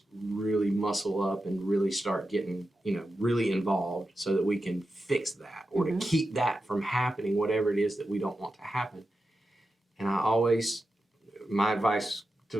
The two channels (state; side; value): normal; both; correlation 0.90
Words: really muscle up and really start getting, you know, really involved, so that we can fix that, or to keep that from happening, whatever it is that we don't want to happen. And my advice